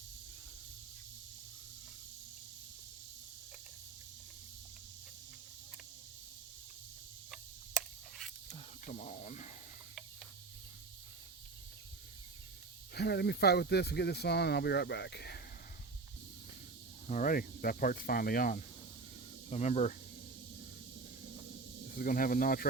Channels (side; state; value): left; quieter; 3.9 dB